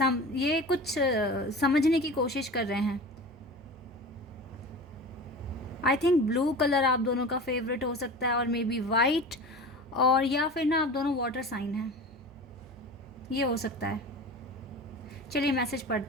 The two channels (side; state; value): right; noise; hum, 23 dB below the sound